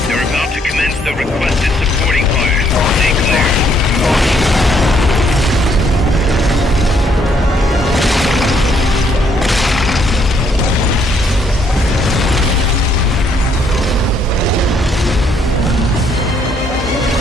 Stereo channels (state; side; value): normal; both; correlation 0.69